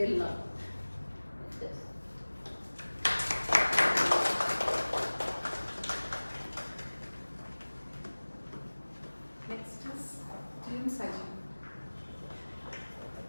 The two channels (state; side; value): inverted; both; correlation -1.00